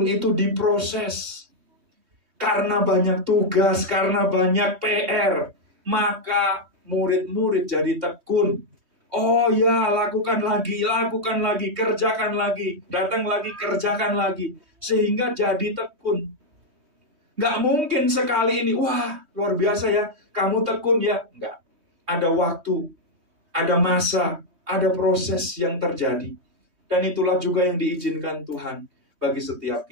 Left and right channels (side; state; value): left; late; 3.2 ms